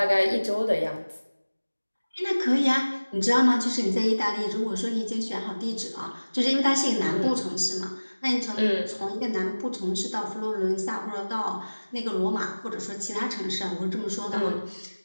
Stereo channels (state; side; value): inverted; both; correlation -1.00